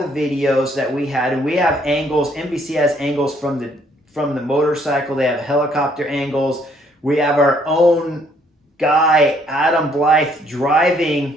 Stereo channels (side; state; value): both; normal; correlation 0.66